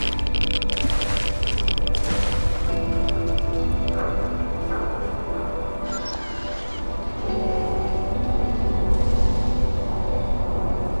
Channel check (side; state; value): both; inverted; correlation -1.00